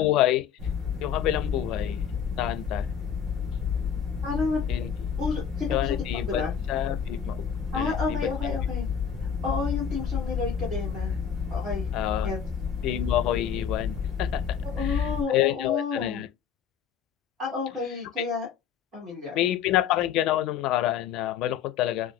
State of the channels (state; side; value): quieter; right; 7.9 dB